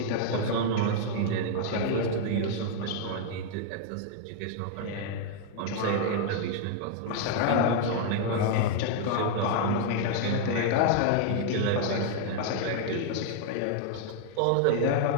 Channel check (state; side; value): different; both; correlation -0.01